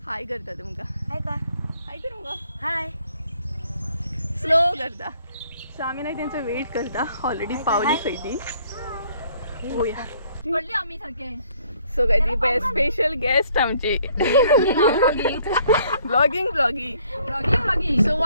हाय करता तुमकां. हाय कर मुगो. हाय स्लो करता. सो आमी न्हय तेंचो वेट करता. ऑलरेडी पावली खंय ती. पळोवया पडली आमी सारके. सो काय ती पळय स्पेशल गेस्ट आमची. ब्लॉगिंग. सो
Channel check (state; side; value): inverted; both; correlation -0.63